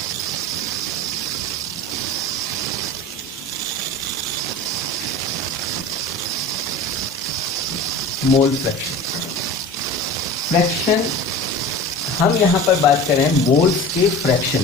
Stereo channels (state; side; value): normal; both; correlation 0.35